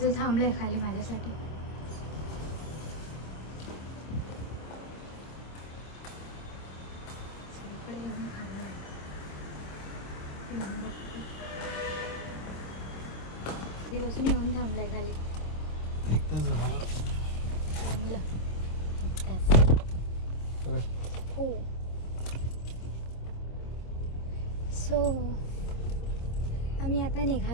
थांबलं आहे खाली माझ्यासाठी. इकडे येऊन थांबलं दिवसून येऊन थांबलंय खाली. एक तास झाला थांबलं हो. सो आम्ही आता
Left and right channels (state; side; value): late; right; 26 ms